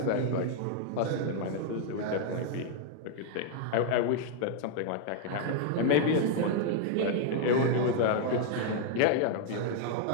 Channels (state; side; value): different; both; correlation 0.00